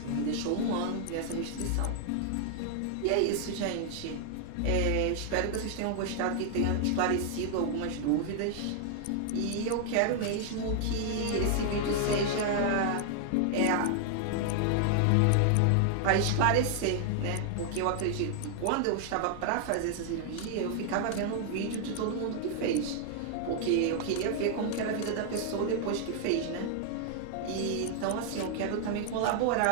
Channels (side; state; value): both; different; correlation 0.00